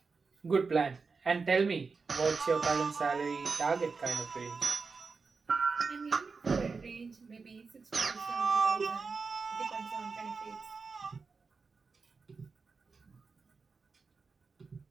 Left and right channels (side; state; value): left; quieter; 4.7 dB